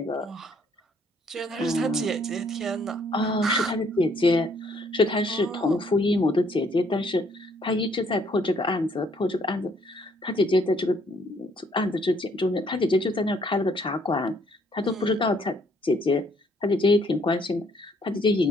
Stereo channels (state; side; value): normal; both; correlation 0.66